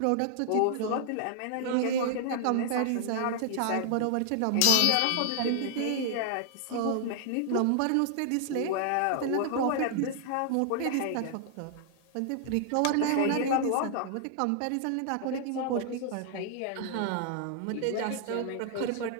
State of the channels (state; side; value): different; both; correlation -0.01